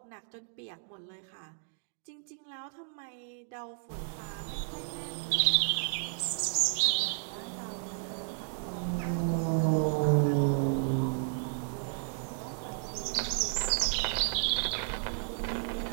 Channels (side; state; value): left; silent; digital silence